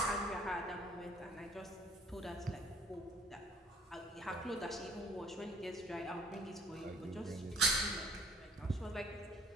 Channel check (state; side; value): normal; both; correlation 0.55